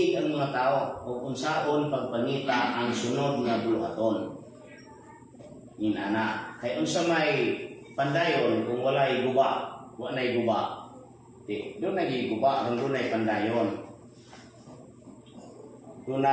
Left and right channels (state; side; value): identical; both; correlation 1.00